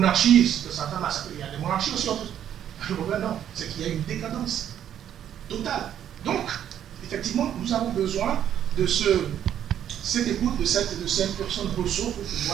il y a des monarchies aussi. Le problème, non, c'est qu'il y a une décadence totale. Donc, effectivement, nous avons besoin de cette écoute de cette personne ressource pour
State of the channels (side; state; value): left; quieter; 10.1 dB